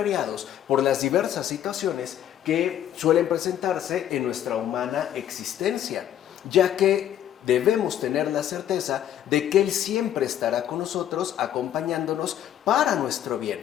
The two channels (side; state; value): right; quieter; 10.8 dB